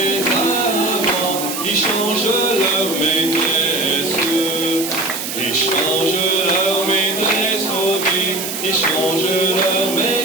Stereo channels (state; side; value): noise; right; hiss, 5 dB below the sound